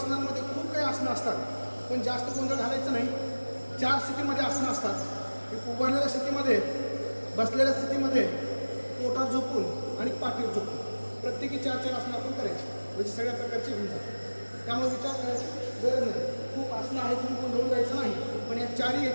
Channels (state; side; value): inverted; both; correlation -1.00